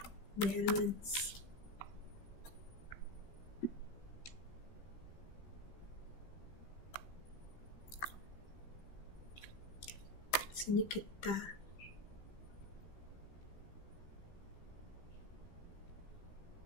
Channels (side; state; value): right; late; 15 ms